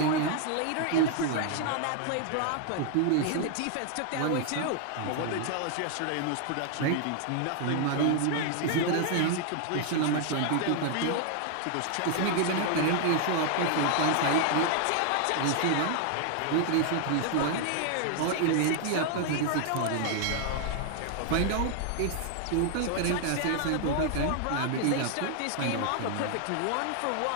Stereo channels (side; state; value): both; different; correlation 0.00